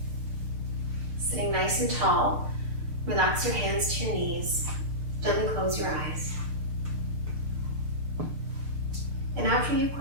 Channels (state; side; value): late; left; 6.6 ms